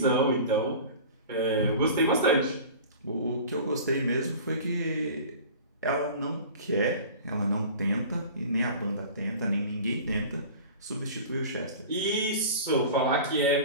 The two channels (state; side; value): inverted; both; correlation -0.39